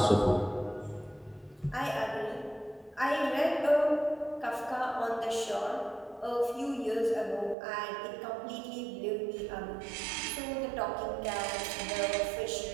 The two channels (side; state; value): left; drops out; at 7.6 s